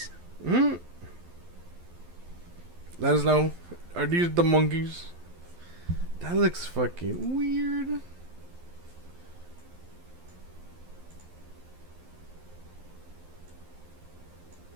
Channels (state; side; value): late; left; 12 ms